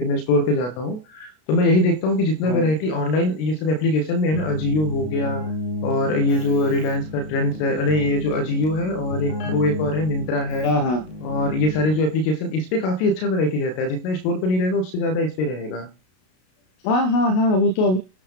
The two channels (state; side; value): late; right; 32 ms